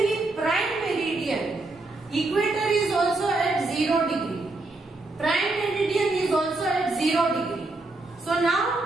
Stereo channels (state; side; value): quieter; left; 3.1 dB